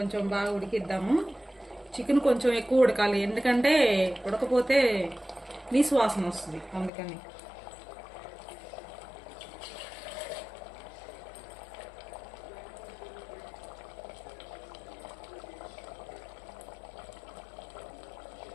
బాగా ఉడికిద్దాము. చికెన్ కొంచెం ఎక్కువ ఉడకాలి, ఎందుకంటే ఉడకపోతే నీసు వాసన వస్తుంది, అందుకని.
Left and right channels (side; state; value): right; drops out; at 6.9 s